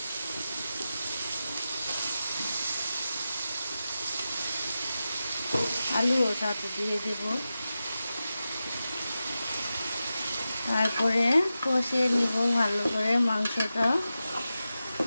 আলুও সাথে দিয়ে দেব, তারপরে কষিয়ে নিব ভালো করে মাংসটা।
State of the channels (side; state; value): both; inverted; correlation -0.92